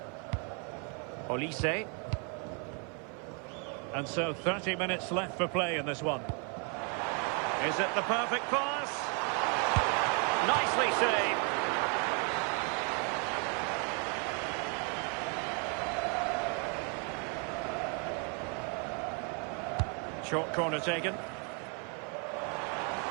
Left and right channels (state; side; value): quieter; left; 37.4 dB